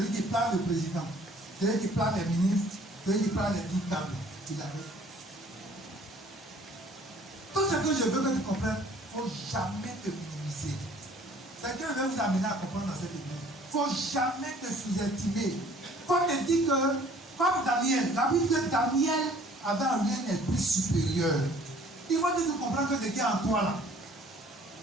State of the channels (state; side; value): normal; both; correlation 0.55